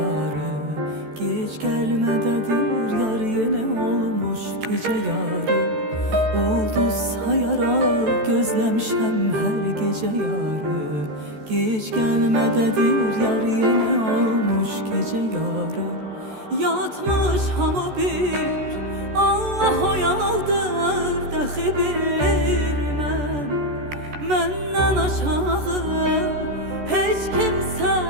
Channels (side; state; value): left; late; 14 ms